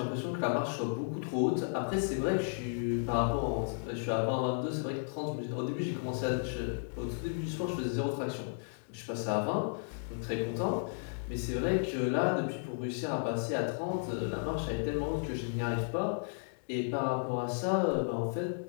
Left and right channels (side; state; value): right; silent; digital silence